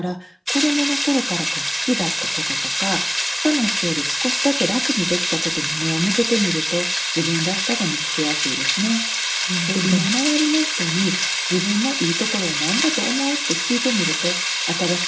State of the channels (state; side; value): identical; both; correlation 1.00